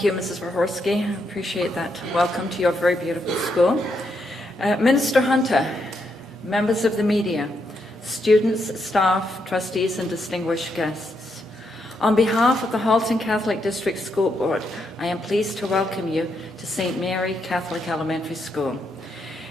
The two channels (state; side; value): normal; both; correlation 0.79